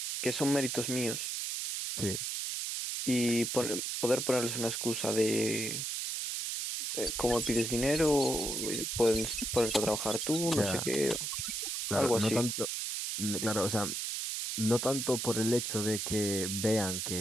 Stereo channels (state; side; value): noise; right; hiss, 2 dB below the sound